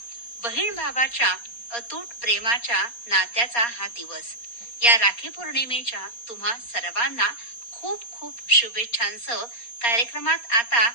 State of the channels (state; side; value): late; right; 4.2 ms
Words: बहीण भावाच्या अतूट प्रेमाच्या नात्याचा हा दिवस। या राखी पौर्णिमेच्या तुम्हा सर्वांना खूप खूप शुभेच्छांसह कार्यक्रमात आता